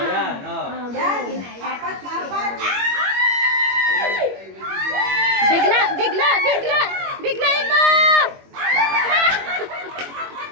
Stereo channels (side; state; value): left; late; 21 ms